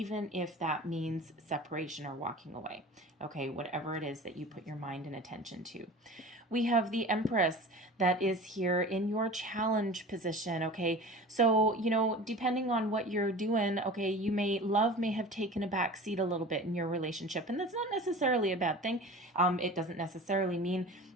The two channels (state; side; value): normal; both; correlation 0.37